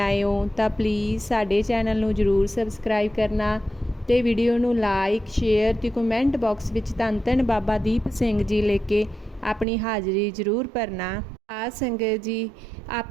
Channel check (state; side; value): drops out; left; at 9.7 s